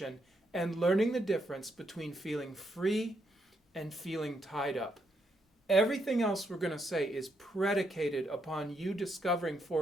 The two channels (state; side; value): normal; both; correlation 0.78